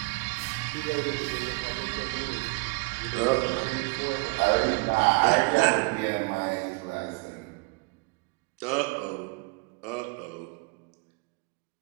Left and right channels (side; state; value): left; quieter; 29.6 dB